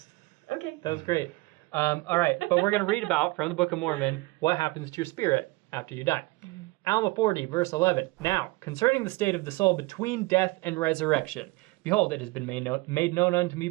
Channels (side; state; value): left; quieter; 22.8 dB